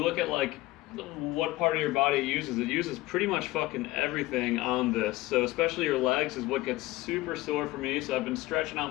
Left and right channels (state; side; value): quieter; right; 18.7 dB